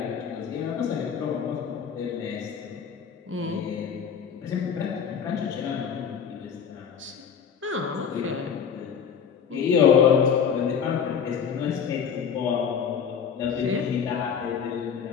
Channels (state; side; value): quieter; right; 7.2 dB